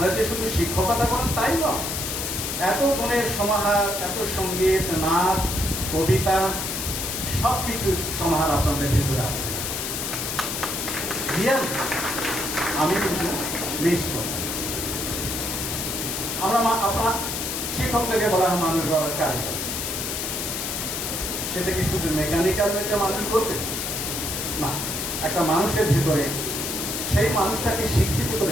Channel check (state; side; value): noise; left; hiss, 3 dB below the sound